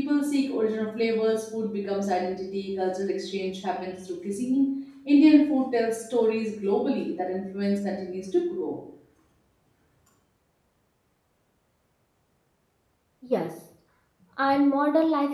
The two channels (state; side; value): identical; both; correlation 1.00